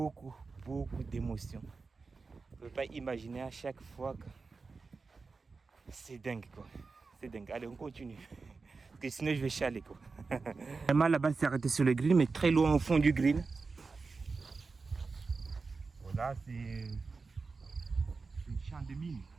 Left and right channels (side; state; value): left; quieter; 4.3 dB